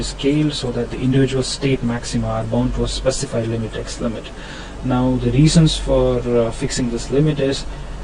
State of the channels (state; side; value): identical; both; correlation 1.00